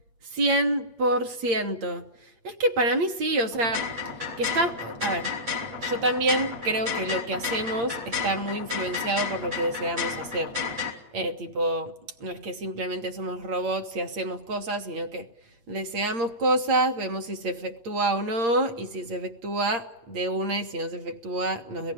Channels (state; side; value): late; left; 8.7 ms